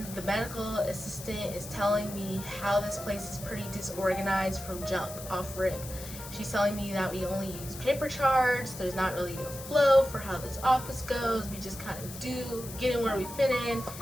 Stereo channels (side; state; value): left; noise; hiss, 12 dB below the sound